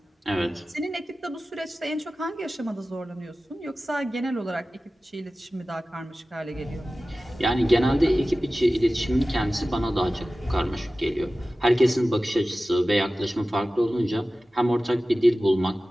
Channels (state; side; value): normal; both; correlation 0.96